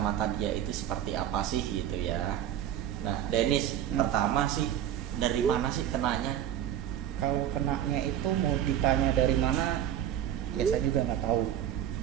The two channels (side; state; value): left; quieter; 10.8 dB